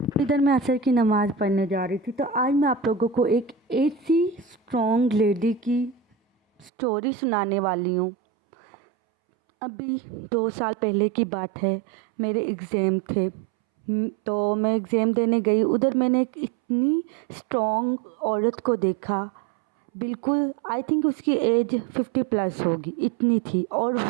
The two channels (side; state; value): left; drops out; at 6.7 s